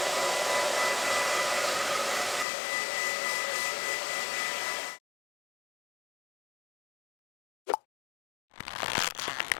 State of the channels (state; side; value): drops out; right; at 2.5 s